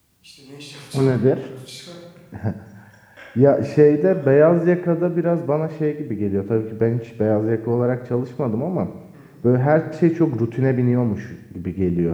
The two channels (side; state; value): both; identical; correlation 1.00